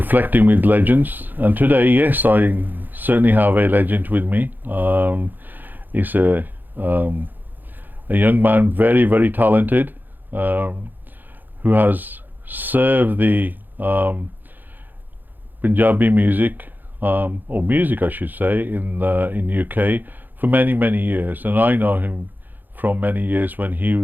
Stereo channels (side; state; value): left; late; 0.088 ms